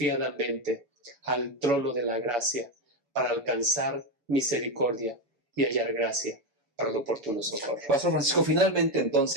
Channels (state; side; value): late; left; 7.0 ms